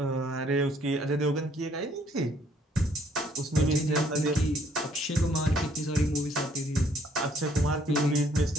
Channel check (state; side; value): normal; both; correlation 0.64